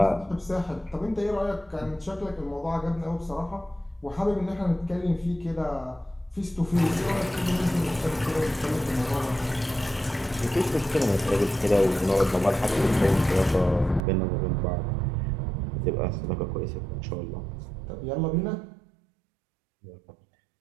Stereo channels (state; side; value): drops out; left; at 14.1 s